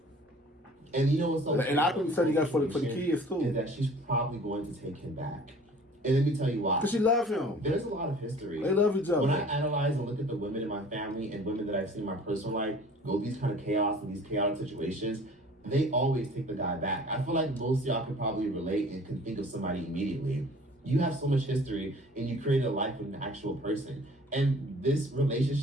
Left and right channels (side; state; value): both; normal; correlation 0.48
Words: And you know what's so and I think said you got for the kids too. Is that she's probably going to take him back. And let me tell you why. Because she loves him. There's a lot of history. They love each other. When I analyze and look at the women in my family and women that I've seen in my personal life go these kind of chaos and these chaotic situations, they always take the guy back. I feel like most of y'all could probably relate and can think of somebody immediately. You have so much history and you created a life with an actual person. And this